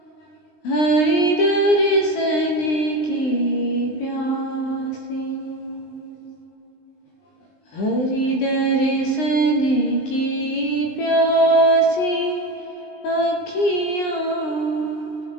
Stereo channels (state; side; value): late; right; 20 ms